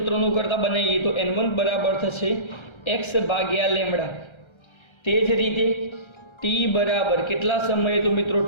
કરતા બનાવીએ તો n1 બરાબર થશે x ભાગ્યા લેમ્ડા. તે જ રીતે t બરાબર કેટલા સમયે? તો મિત્રો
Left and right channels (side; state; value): right; late; 1.3 ms